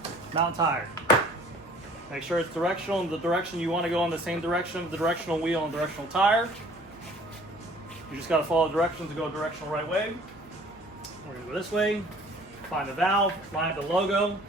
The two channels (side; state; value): right; noise; hum, 27 dB below the sound